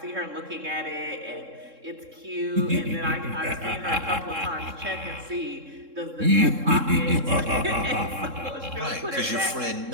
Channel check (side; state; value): left; late; 3.7 ms